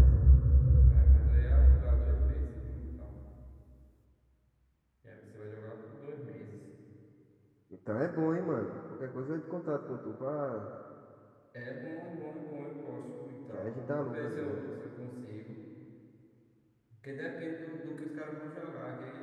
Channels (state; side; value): identical; both; correlation 1.00